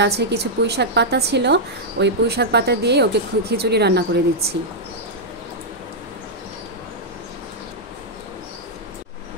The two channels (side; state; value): both; normal; correlation -0.05